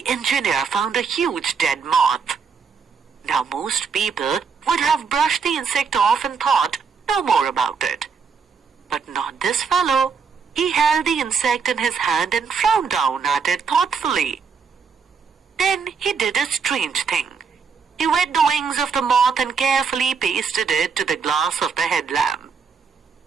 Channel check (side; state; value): left; quieter; 5.7 dB